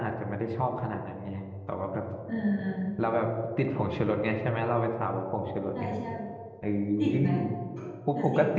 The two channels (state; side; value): identical; both; correlation 1.00